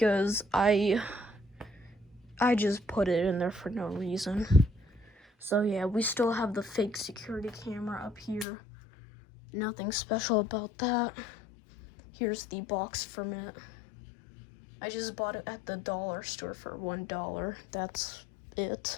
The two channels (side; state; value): right; drops out; at 8.5 s